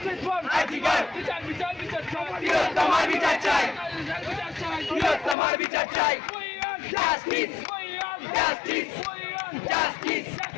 for Arjigar! বিচার বিচার বিচার চাই তোমার বিচার চাই তোমার বিচার চাই justice justice justice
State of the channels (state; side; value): drops out; right; at 5.4 s